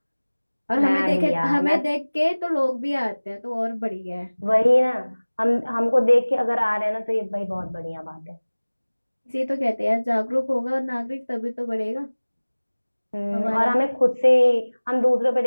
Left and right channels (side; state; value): both; inverted; correlation -1.00